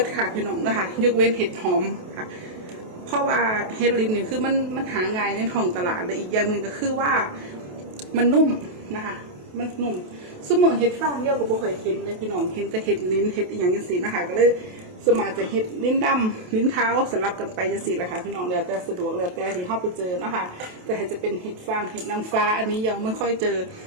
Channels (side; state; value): left; late; 28 ms